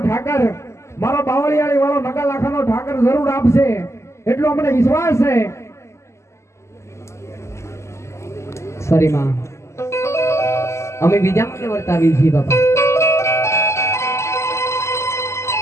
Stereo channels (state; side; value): late; right; 0.13 ms